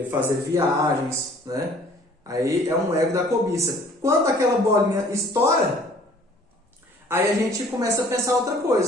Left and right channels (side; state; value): both; normal; correlation 0.54